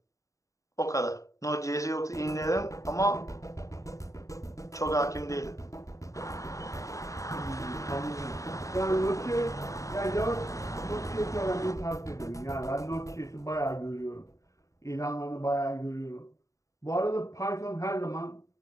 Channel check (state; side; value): late; right; 0.16 ms